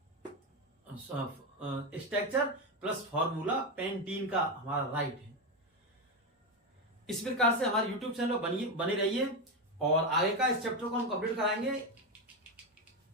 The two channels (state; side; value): normal; both; correlation 0.11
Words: स्ट्रक्चर प्लस फॉर्मूला पेंटीन का हमारा राइट है। इस प्रकार से हमारे YouTube चैनल पर बने रहिए, और आगे का इस चैप्टर को हम कंप्लीट कराएंगे